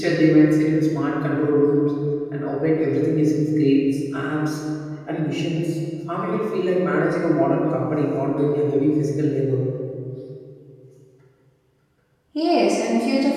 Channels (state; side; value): identical; both; correlation 1.00